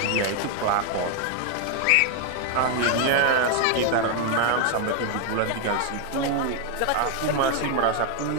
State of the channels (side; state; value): both; different; correlation 0.00